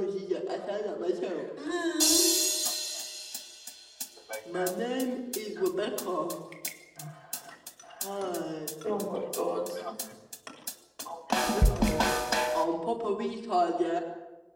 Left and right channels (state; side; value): identical; both; correlation 1.00